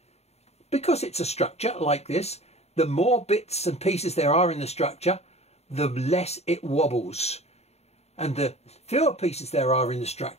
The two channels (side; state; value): right; late; 0.31 ms